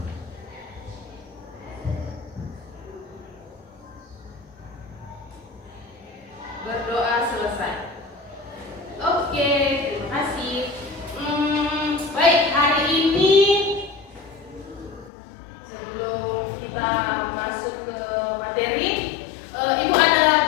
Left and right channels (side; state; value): right; drops out; at 15.1 s